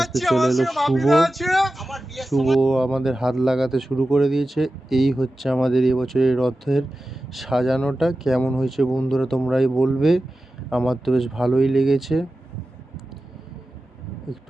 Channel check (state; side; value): normal; both; correlation 0.94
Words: আস্তে চলে এলো শুভ আমাদের হাত লাগাতে শুরু করে দিয়েছে। এই হচ্ছে আমাদের এবছরের রথের সাজানোটা। কেমন হয়েছে বন্ধুরা তোমরাই বলবে। আমার তো বেশ ভালোই লেগেছে।